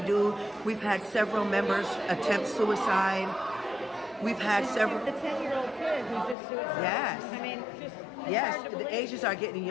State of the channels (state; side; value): drops out; right; at 6.4 s